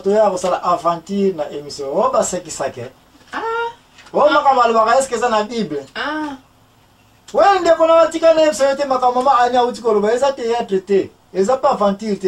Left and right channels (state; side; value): identical; both; correlation 1.00